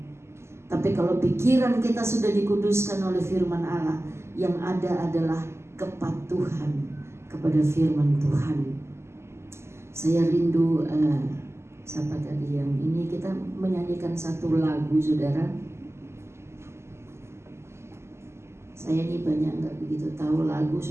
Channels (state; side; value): late; left; 0.13 ms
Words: Tapi kalau pikiran kita sudah dikuduskan oleh firman Allah, yang ada adalah kepatuhan kepada firman Tuhan. Saya rindu siapa tadi yang ini, kita menyanyikan satu lagu saudara. Saya ini banyak nggak begitu tahu lagu,